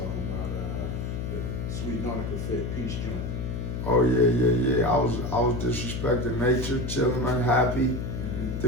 about the Sweet Nautica Fit Peach joint. Oh yeah. I was disrespecting nature, chilling, unhappy,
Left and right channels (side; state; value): left; noise; hum, 4 dB below the sound